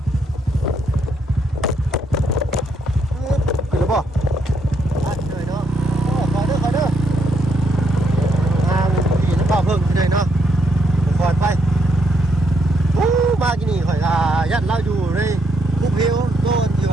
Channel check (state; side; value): normal; both; correlation 0.75